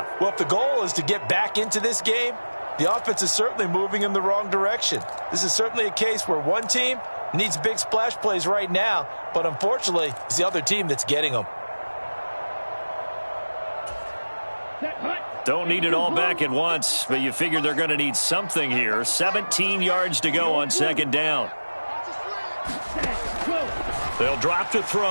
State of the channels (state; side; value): inverted; both; correlation -1.00